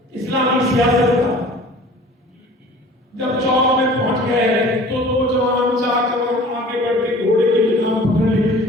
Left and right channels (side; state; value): both; normal; correlation 0.46